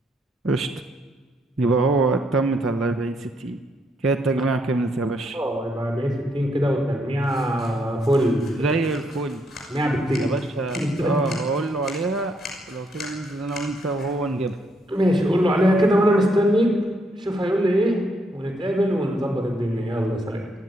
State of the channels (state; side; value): normal; both; correlation 0.74